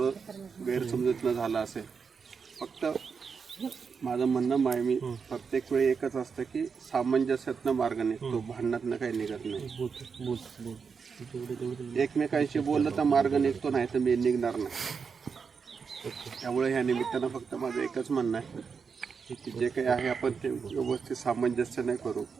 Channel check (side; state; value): left; quieter; 5.7 dB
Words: गैरसमजूतनं झालं असेल. फक्त माझं म्हणणं आहे, मी प्रत्येक वेळी एकच असतं की सामंजस्यातनं मार्ग निघतो, भांडणातनं काही निघत नाही. एकमेकांशी बोललं तर मार्ग निघतो, नाही तर मी निघणार नाही. त्यामुळे ह्या निमित्तानं फक्त माझं एकच म्हणणं आहे की जे काही आहे आपण ते व्यवस्थित सामंजस्याने करू.